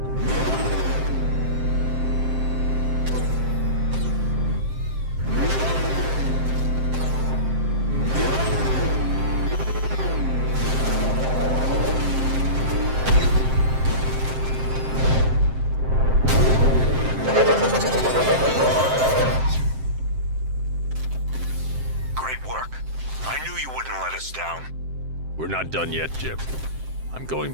We're not done yet, Jim. I'm going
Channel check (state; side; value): late; left; 7.7 ms